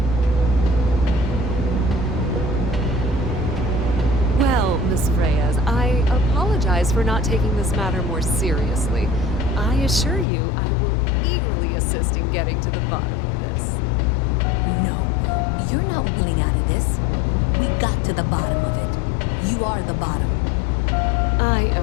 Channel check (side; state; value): right; drops out; at 10.2 s